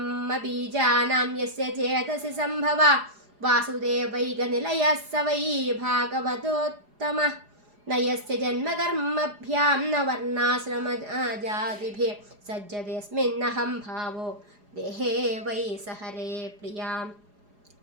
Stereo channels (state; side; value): late; left; 4.9 ms